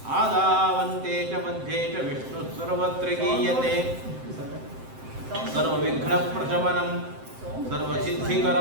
ಆದಾವಂತೆ ಚ ಮಧ್ಯೆ ಚ ವಿಷ್ಣುಃ ಸರ್ವತ್ರ ಗೀಯತೆ. ಸರ್ವವಿಘ್ನಪ್ರಶಮನಂ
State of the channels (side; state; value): left; late; 7.7 ms